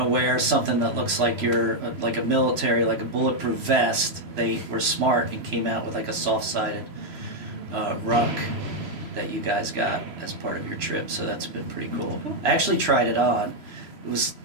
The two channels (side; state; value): left; late; 3.0 ms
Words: to wear something that looks like you're like a military, like a bulletproof vest, they were smart and came out with like a soft-sided ruck that you guys got as part of your trip. So that's been pretty cool. I actually tried it on. It was,